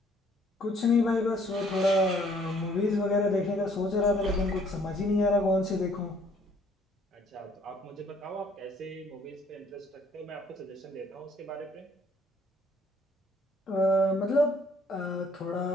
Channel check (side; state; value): both; normal; correlation 0.61